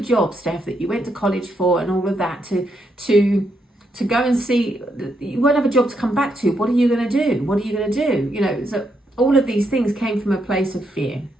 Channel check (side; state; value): both; normal; correlation 0.78